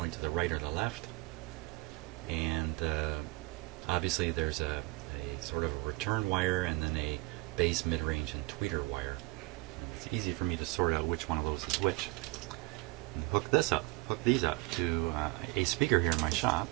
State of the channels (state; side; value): quieter; left; 23.9 dB